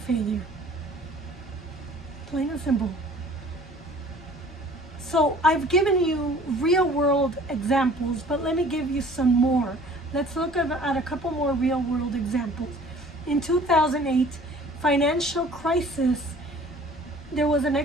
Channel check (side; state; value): both; normal; correlation 0.50